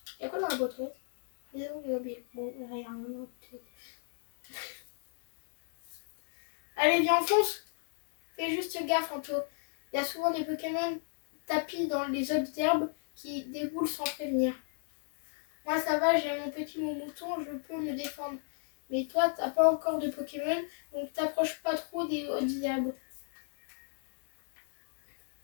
Y'a quoi dans la boîte? Bon, rien. Allez, viens, on fonce. Fais juste gaffe, Anto. Il y a souvent des Pokémon tapis dans les autres herbes qui déboulent sans prévenir. Moi, ça va, j'ai mon petit mouton, je peux me défendre. Mais toi, t'as pas encore de Pokémon, donc t'approches pas trop des hautes herbes.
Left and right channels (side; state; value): right; silent; 55 dB below the other